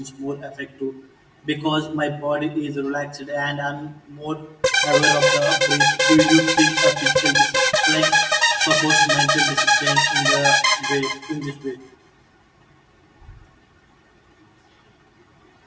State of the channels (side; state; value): both; identical; correlation 1.00